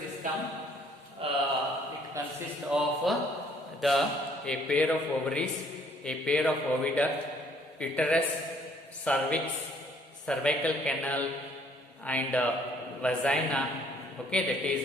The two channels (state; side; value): normal; both; correlation 0.62